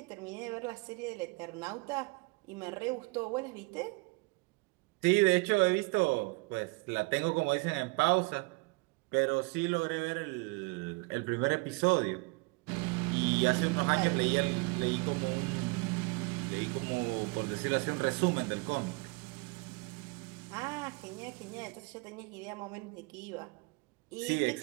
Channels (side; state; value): left; quieter; 27.5 dB